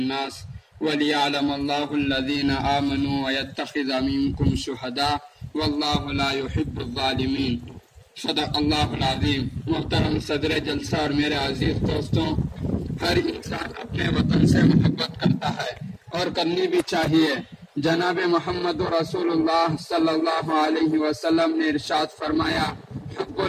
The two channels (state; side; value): identical; both; correlation 1.00